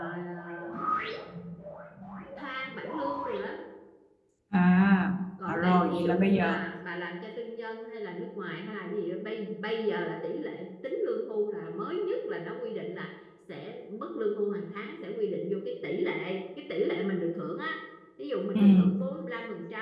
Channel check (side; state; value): both; identical; correlation 1.00